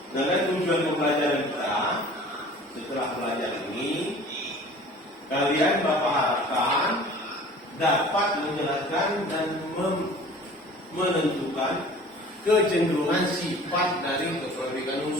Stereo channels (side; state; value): both; normal; correlation 0.45